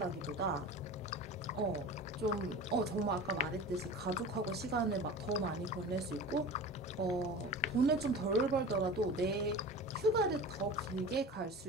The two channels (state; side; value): normal; both; correlation 0.35